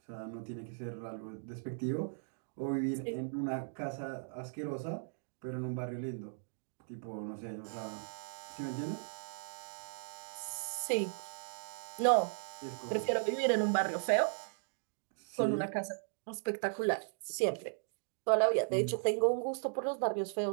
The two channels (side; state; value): left; silent; digital silence